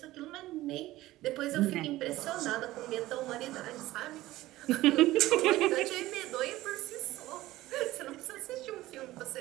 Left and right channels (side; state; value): left; quieter; 16.7 dB